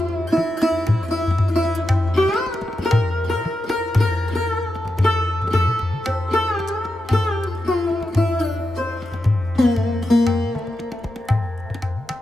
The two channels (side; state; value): both; normal; correlation 0.88